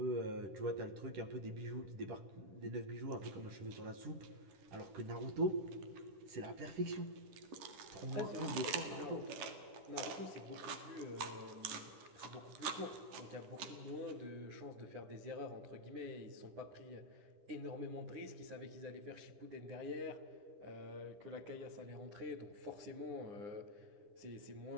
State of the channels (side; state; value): left; late; 10 ms